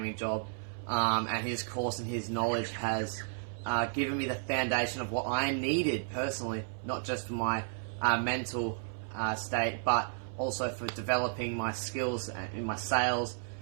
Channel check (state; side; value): silent; left; 56 dB below the other